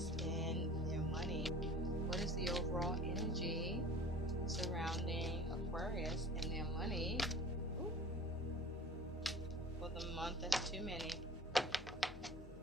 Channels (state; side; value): normal; both; correlation 0.42